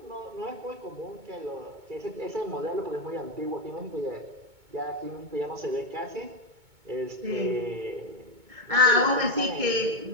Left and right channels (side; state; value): left; late; 2.2 ms